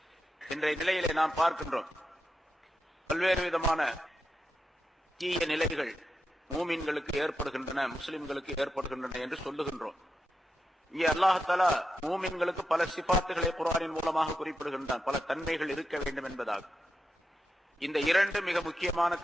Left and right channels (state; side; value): normal; both; correlation 0.87